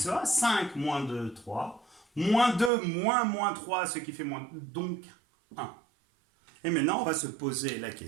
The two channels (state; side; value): drops out; left; at 2.7 s